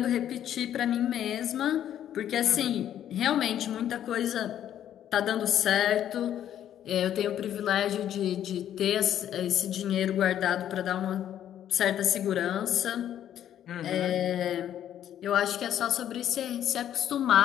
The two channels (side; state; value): right; quieter; 10.7 dB